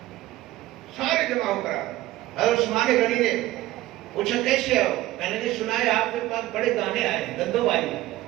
سارے جمع ہو کر حضرت عثمان غنی نے پوچھا کیسے ہو؟ کہنے نے سنا ہے آپ کے پاس بڑے دانے آئے گندم آئی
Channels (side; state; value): left; quieter; 16.3 dB